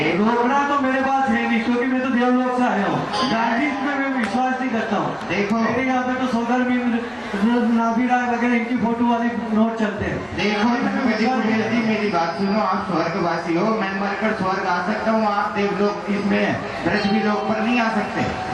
रोकड़ा तो मेरे पास है नहीं क्योंकि मैं तो देवलोक से आया हूँ। गांधी में मैं विश्वास नहीं करता हूँ। देखो, मेरे यहाँ पे तो सौगर भी नाभिराय वगैरह इनकी फोटो वाले नोट चलते हैं। देखो धनपति कुबेर जी, मेरी बात सुनो। आप स्वर्गवासी हो, मैं मरकर स्वर्ग आ सकता हूँ। आप देवलोक इसमें पृथ्वी लोक पर नहीं आ सकते।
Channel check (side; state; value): both; identical; correlation 1.00